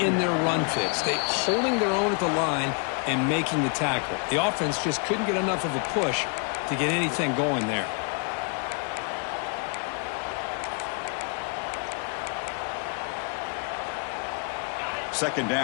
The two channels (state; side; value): quieter; right; 37.6 dB